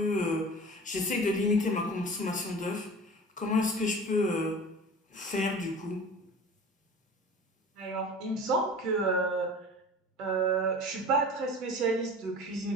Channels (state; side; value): normal; both; correlation 0.39